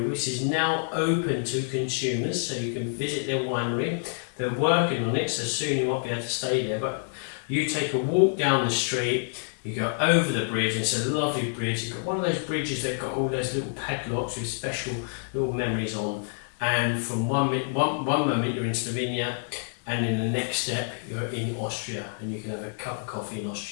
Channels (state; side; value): silent; right; digital silence